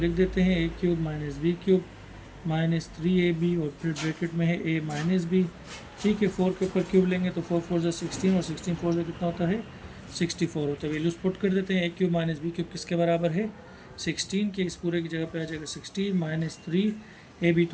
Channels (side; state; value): both; identical; correlation 1.00